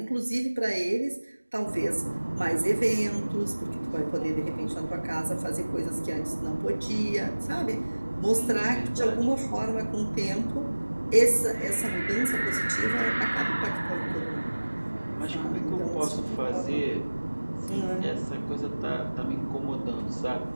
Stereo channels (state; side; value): inverted; both; correlation -1.00